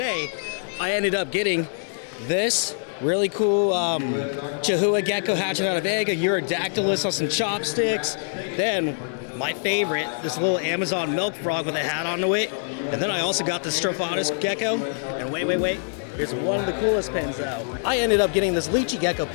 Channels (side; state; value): right; silent; digital silence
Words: I ended up getting this really cool Chahuas gecko hatching out of egg, a Urodactylus on some chopsticks. Then, my favorite, this little Amazon milk frog with a hat on to it. And then I also got the Strophatus gecko. And wait, here's one of the coolest pins though. I ended up getting this Leachy gecko